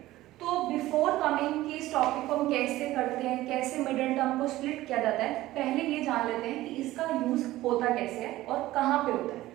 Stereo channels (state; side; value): quieter; left; 16.4 dB